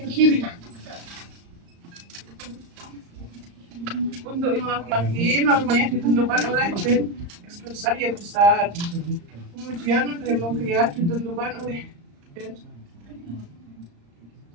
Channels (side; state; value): left; late; 35 ms